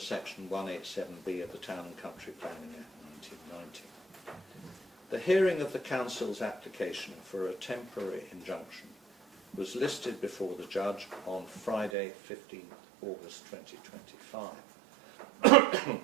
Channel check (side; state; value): left; drops out; at 11.9 s